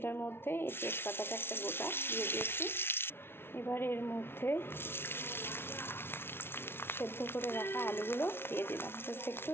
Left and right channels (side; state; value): right; late; 0.11 ms